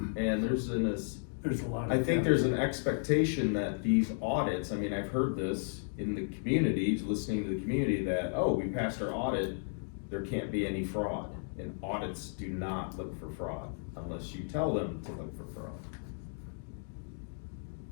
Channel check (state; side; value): silent; right; digital silence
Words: And there's There's a lot of. I think there's an expectation that these audits, I mean, I've heard this in the community, listening to the community, that, oh, we passed our audit, there can't be any fraud. And audits do not look for fraud unless you tell them to look for fraud.